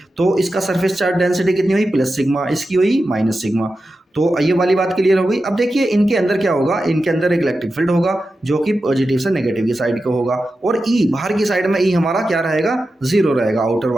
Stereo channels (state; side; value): normal; both; correlation 0.91